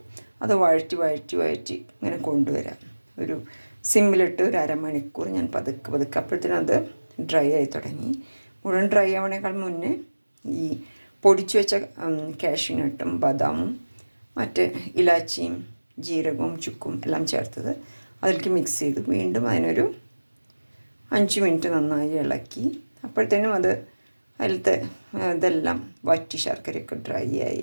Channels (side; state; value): both; inverted; correlation -1.00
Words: അത് വഴറ്റി ഇങ്ങനെ കൊണ്ടുവരാം. ഒരു സിമ്മിലിട്ട് ഒരു അരമണിക്കൂർ ഞാൻ പതുക്കെ അപ്പോഴത്തേനും അത് ഡ്രൈ ആയി തുടങ്ങി. മുഴുവൻ ഡ്രൈ ആവണേക്കാൾ മുന്നേ ഈ പൊടിച്ചു വെച്ച കാഷ്യൂനട്ടും ബദാമും മറ്റ് ഇലാച്ചിയും ജീരകവും ചുക്കും എല്ലാം ചേർത്തത് അതിലേക്ക് മിക്സ് ചെയ്തു. വീണ്ടും അതിനൊരു 5 മിനിറ്റ് നന്നായി ഇളക്കി. അപ്പോഴത്തേനും അത് അതിലത്തെ ഇതെല്ലാം വറ്റി ശർക്കരയൊക്കെ ഡ്രൈ